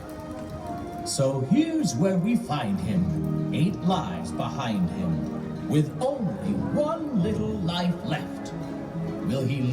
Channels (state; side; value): identical; both; correlation 1.00